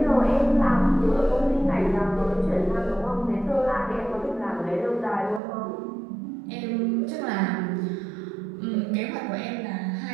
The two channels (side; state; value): left; drops out; at 5.4 s